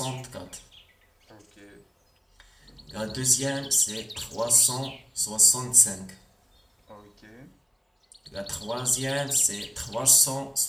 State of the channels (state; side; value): identical; both; correlation 1.00